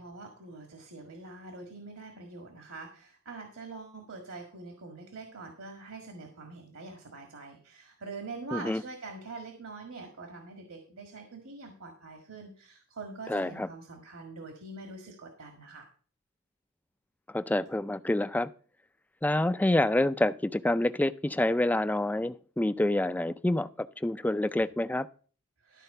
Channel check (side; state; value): both; normal; correlation 0.87